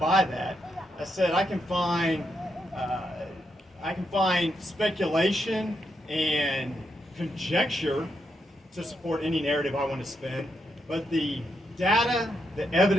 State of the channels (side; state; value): both; normal; correlation 0.82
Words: that. I said, I can find speculation and conjecture to support any narrative I want to spin, but the data, the